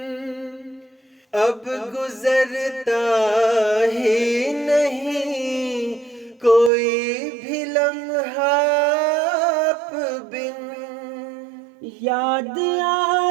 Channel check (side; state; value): left; drops out; at 6.7 s